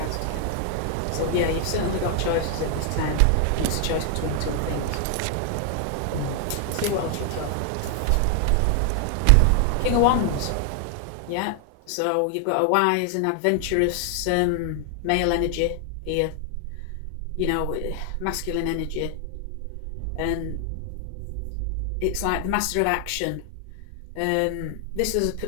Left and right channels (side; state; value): both; different; correlation 0.00